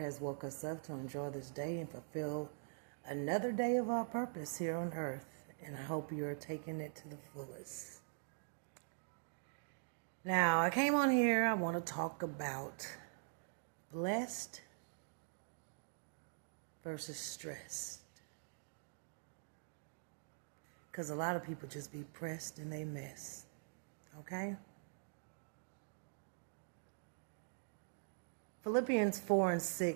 has woke us up to enjoy this day and fulfill another day of our purpose here on earth. And I hope you're taking it to the fullest. Now, I came on here, I want to talk about blessed versus stressed. Because a lot of people just be pressed and they mess. Okay? Philippians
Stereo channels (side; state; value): left; silent; digital silence